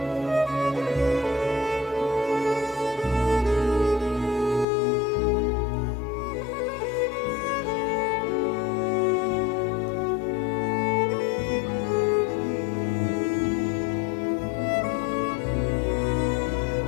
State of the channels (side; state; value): right; drops out; at 4.7 s